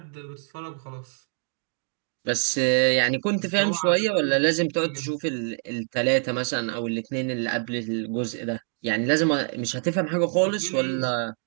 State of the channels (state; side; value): silent; left; 59 dB below the other